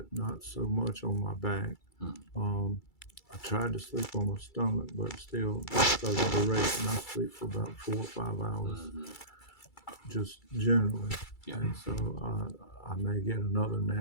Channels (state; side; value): late; right; 2.3 ms